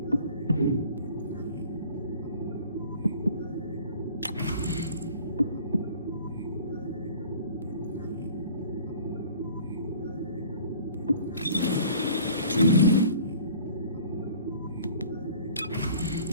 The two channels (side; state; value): both; inverted; correlation -0.49